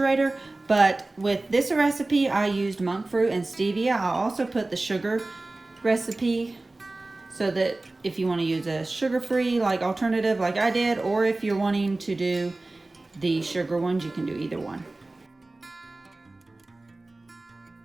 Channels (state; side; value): quieter; left; 3.0 dB